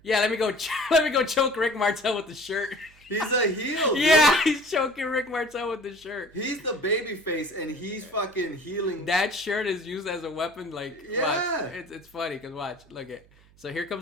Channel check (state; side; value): noise; right; hum, 28 dB below the sound